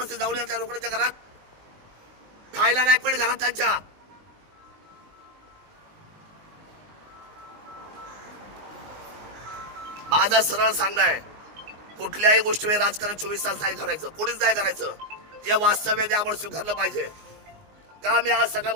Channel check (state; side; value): late; left; 19 ms